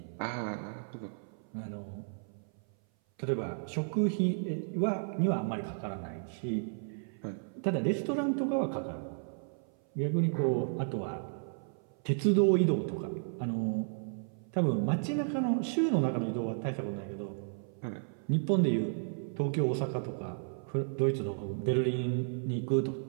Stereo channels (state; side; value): silent; left; 56 dB below the other